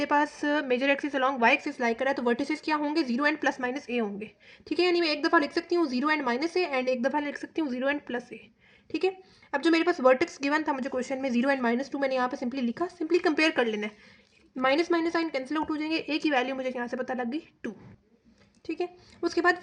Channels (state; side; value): identical; both; correlation 1.00